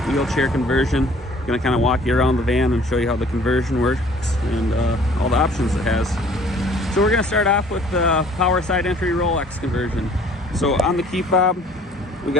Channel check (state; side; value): normal; both; correlation 0.54